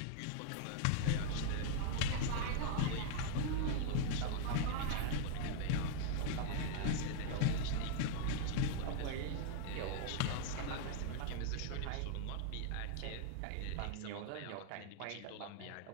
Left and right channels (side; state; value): both; different; correlation 0.00